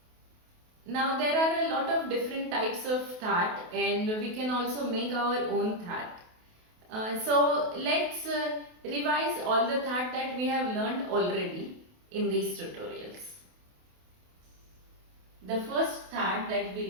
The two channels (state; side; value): late; left; 28 ms